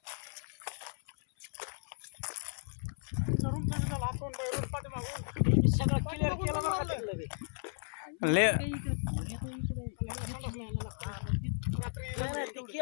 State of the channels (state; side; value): silent; right; 54 dB below the other